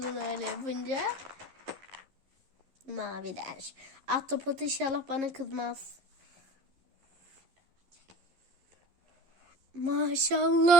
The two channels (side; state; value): left; late; 11 ms